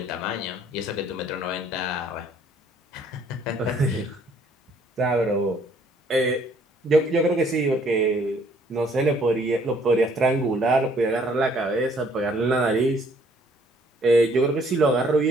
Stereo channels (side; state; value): both; normal; correlation 0.62